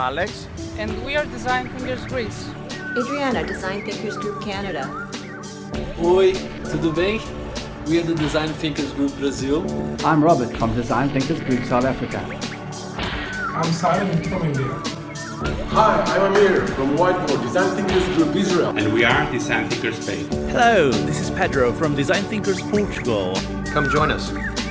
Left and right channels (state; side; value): identical; both; correlation 1.00